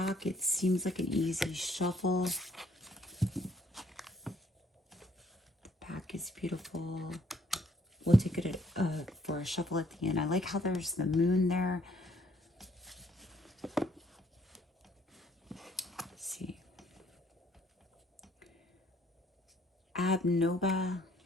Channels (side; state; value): both; normal; correlation 0.65